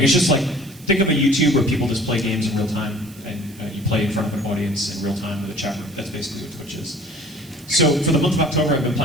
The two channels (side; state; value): right; noise; hiss, 23 dB below the sound